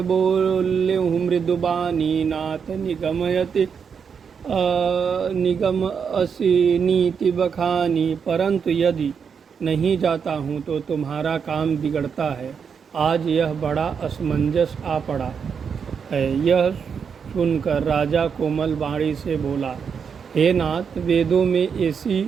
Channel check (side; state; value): left; quieter; 6.5 dB